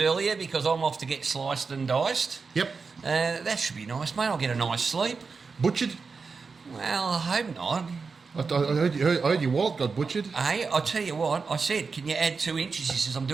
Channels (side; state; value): left; quieter; 4.8 dB